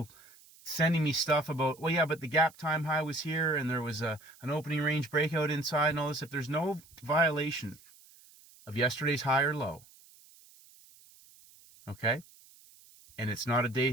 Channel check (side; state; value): right; noise; hiss, 25 dB below the sound